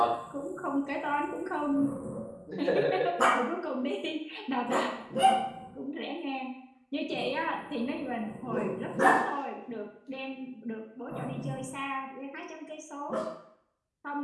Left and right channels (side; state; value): both; identical; correlation 1.00